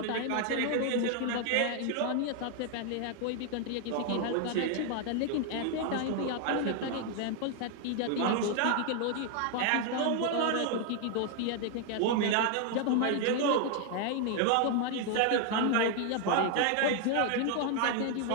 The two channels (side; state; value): both; different; correlation 0.00